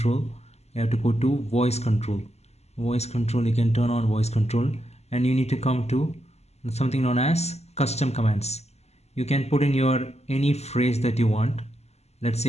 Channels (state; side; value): late; right; 0.31 ms